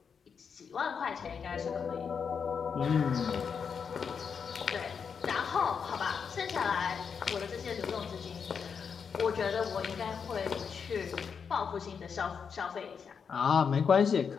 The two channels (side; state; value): right; quieter; 6.4 dB